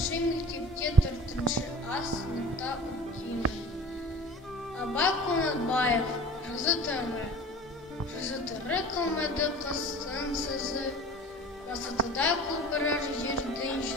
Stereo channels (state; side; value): normal; both; correlation 0.41